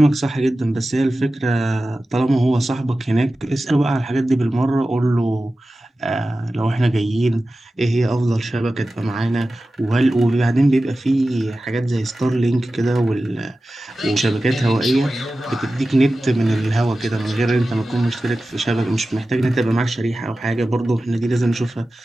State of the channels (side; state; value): both; normal; correlation 0.95